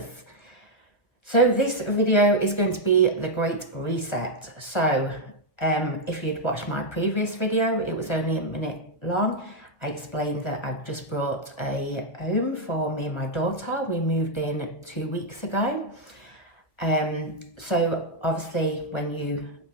So this video is going to be the Great Reset. So if you'd watched my previous video, it was only a minute long. I explained that I've just brought a home for me and my daughter. We moved in 2 weeks ago. So obviously when you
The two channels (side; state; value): right; late; 1.5 ms